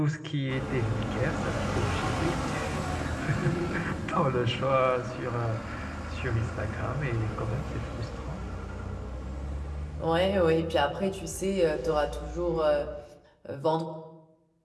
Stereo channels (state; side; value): identical; both; correlation 1.00